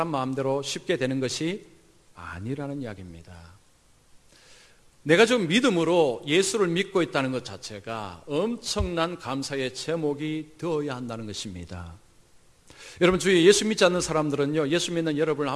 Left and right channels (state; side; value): identical; both; correlation 1.00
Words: 마음대로 쉽게 되는 것이 아니라는 이야기입니다. 내가 좀 믿음으로 예수를 믿고 있다는 것 자체가 엄청난 감사의 제목이 되어야 한다는 것입니다. 여러분, 주위에 예수 믿지 않는 사람들은요, 예수 믿는 여러분을